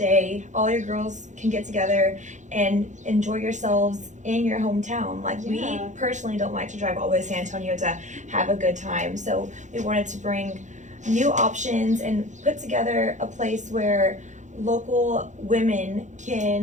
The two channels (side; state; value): left; late; 0.35 ms